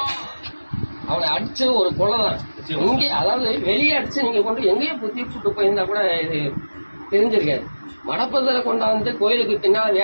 அவனை அடிச்சு ஒரு கொலைதான் இங்கே, அதாவது வெளியே அடிச்சு நீங்க கொண்டு எங்கேயோ தீர்ச்சுட்டு போயிருந்தா கூட இது தெரிஞ்சிருக்காது. மடப்பதில் கொண்டாந்து கோயிலுக்கு பின்னால்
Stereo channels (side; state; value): both; inverted; correlation -1.00